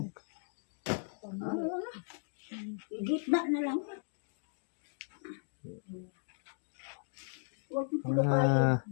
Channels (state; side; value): silent; right; digital silence